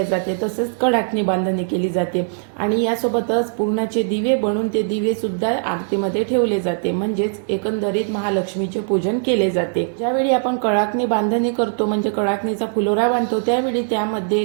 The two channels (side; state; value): left; silent; digital silence